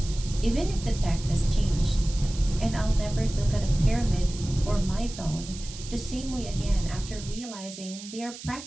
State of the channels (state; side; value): noise; right; hiss, 13 dB below the sound